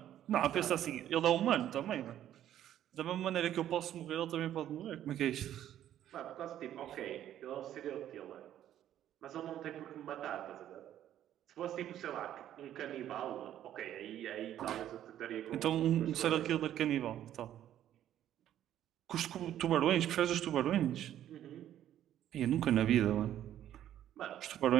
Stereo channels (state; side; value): quieter; left; 11.5 dB